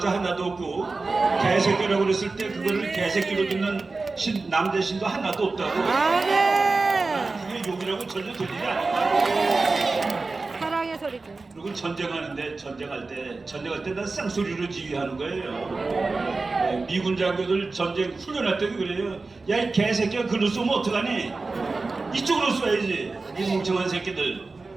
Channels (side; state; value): left; quieter; 3.7 dB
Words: 하나도 없고 개새끼라고 그랬을 때 그거를 개새끼로 듣는 남자 신도 하나도 없다고. 그게 욕이라고 전혀 들리지 않아요. 그리고 전쟁하는데 전쟁할 때 난 쌍소리로 지휘하는 거예요. 미군 장교들 전쟁 훈련할 때도 그래요. 야 이 개새끼야 글로 쏘면 어떡하니? 이쪽으로 쏘야지. 이 멍청한 새끼들